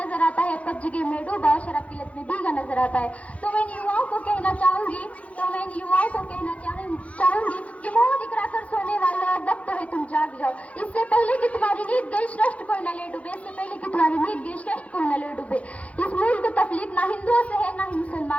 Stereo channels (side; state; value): right; late; 0.065 ms